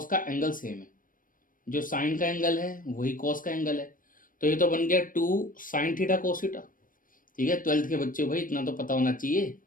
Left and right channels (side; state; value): right; late; 0.40 ms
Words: का एंगल सेम है। जो साइन का एंगल है वही कॉस का एंगल है। तो ये तो बन गया 2 साइन थीटा कोस थीटा, ठीक है। 12th के बच्चे भाई इतना तो पता होना चाहिए।